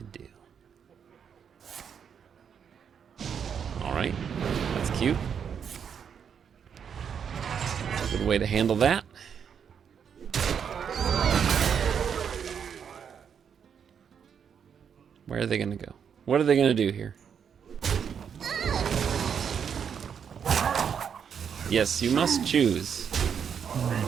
do? Alright, that's cute. Good way to handle that. Where are they going to go? What are they going to do here? Yes, you must choose.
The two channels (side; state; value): left; quieter; 7.5 dB